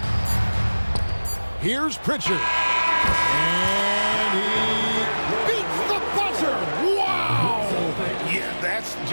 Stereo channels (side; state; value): both; inverted; correlation -1.00